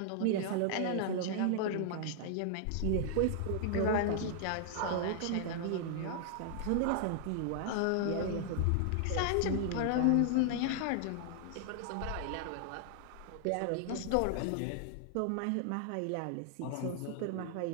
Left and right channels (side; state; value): both; different; correlation 0.00